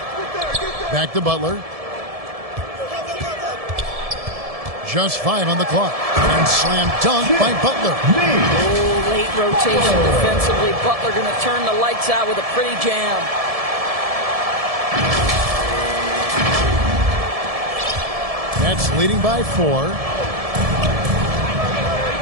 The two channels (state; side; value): late; left; 1.7 ms